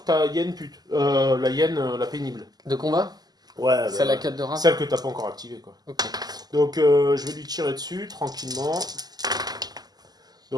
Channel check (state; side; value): late; left; 0.20 ms